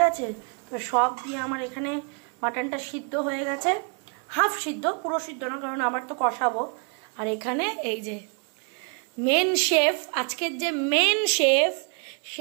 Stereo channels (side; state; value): left; quieter; 39.8 dB